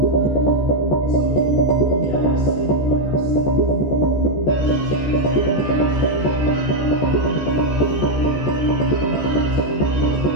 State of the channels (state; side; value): late; right; 14 ms